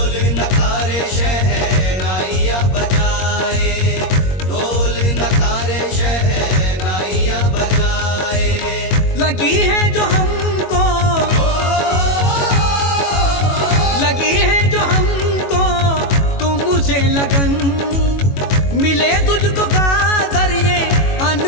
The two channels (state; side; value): late; right; 21 ms